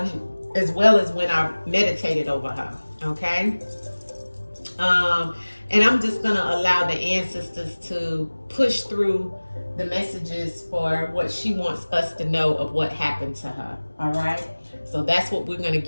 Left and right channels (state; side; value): inverted; both; correlation -1.00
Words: as well as when I meditated over her, okay? And I'm just gonna allow the ancestors to push through the messages for what she wants us to know of what happened to her, all right? So that's what we're gonna